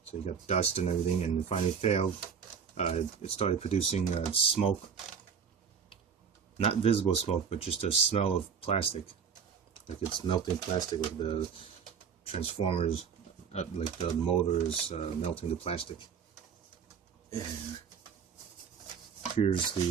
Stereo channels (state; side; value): quieter; left; 6.7 dB